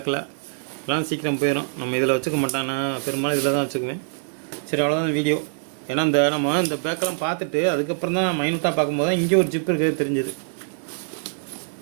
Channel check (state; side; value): silent; left; 63 dB below the other